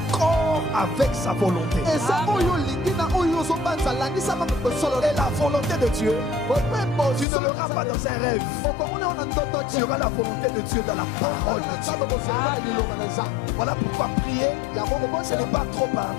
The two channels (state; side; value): drops out; right; at 7.2 s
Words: avec sa volonté. Et la volonté de Dieu, tu ne l'auras pas dans un rêve. Tu auras la volonté de Dieu dans la parole de Dieu. Voilà pourquoi prier, ce n'est pas trop